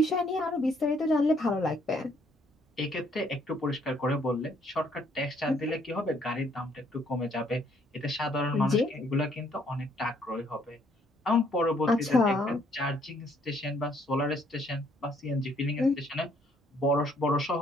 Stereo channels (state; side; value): normal; both; correlation 0.66